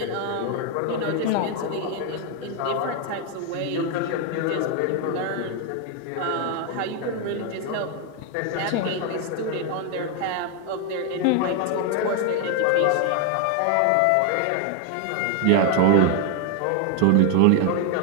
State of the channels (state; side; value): different; both; correlation 0.01